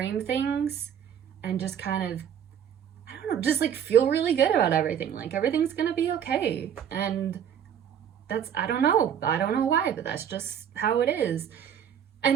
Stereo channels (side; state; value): left; quieter; 8.8 dB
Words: things and just kind of, I don't know, just like feel really good about everything. Like everything's gonna be okay. And that's, I don't know why, but that's just how it is.